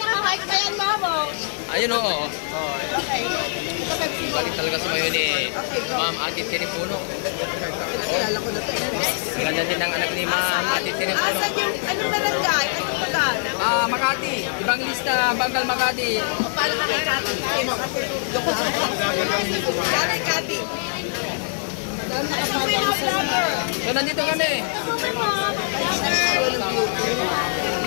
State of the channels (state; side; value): silent; right; digital silence